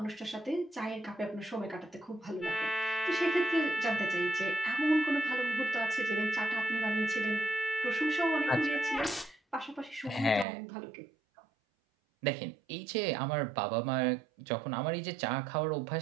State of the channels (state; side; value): drops out; left; at 10.5 s